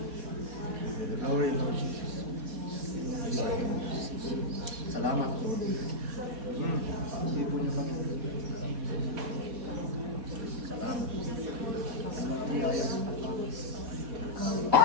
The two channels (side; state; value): left; late; 4.2 ms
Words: Glory, Lord Jesus. Salamat, Lord. Libo niyo kami. Salamat.